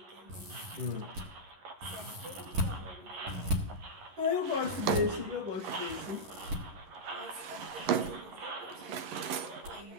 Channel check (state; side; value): late; left; 11 ms